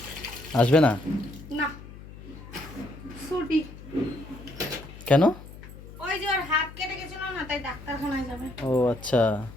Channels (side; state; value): left; noise; hum, 16 dB below the sound